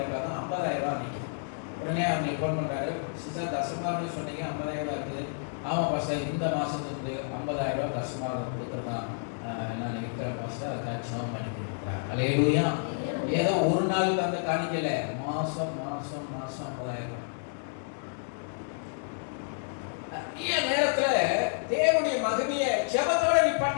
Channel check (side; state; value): right; silent; digital silence